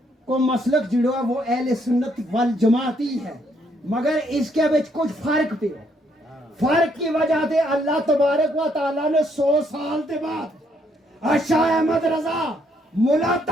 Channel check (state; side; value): normal; both; correlation 0.71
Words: को मसलक जुड़ा वो अहले सुन्नत वल जमात ही है, मगर इसके बीच कुछ फर्क पे हो। फर्क की वजह से अल्लाह तबारक व तआला ने 100 साल के बाद शाह अहमद रजा मुला